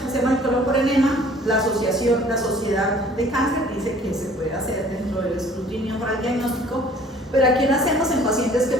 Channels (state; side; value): normal; both; correlation 0.53